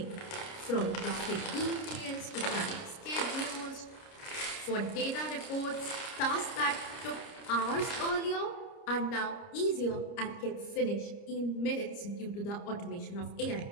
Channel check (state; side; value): late; right; 29 ms